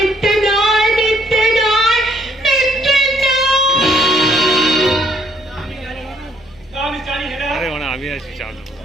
নয়, মিথ্যে নয়, মিথ্যে নয়। আরে মানে আমি আছি চাল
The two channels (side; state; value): left; noise; hum, 28 dB below the sound